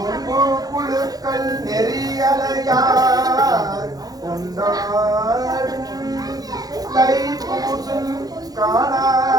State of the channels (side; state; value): left; late; 0.18 ms